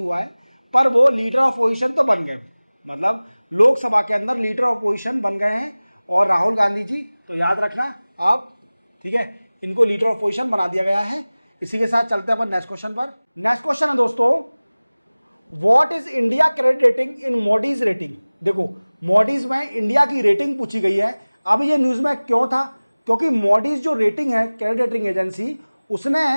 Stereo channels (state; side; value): inverted; both; correlation -0.99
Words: है, पर वो लीडर ऑफ अपोजिशन तो बन गए। मतलब लोकसभा के अंदर लीडर ऑफ अपोजिशन बन गए हैं। और राहुल गांधी जी, तो याद रखना आप, ठीक है, इनको लीडर ऑफ अपोजिशन बना दिया गया है। इसी के साथ चलते हैं अपन नेक्स्ट क्वेश्चन पर। नेक्स्ट क्वेश्चन है दोस्तों, what is India credit rating in Modi's rating. देखो, मोडीज में इंडिया की रेटिंग पूछी गई है। अब ये न्यूज में क्यों था? क्योंकि मोडीज जो रेटिंग है, क्रेडिट रेटिंग एजेंसी, उसने